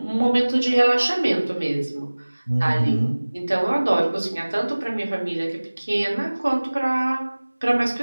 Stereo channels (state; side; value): inverted; both; correlation -1.00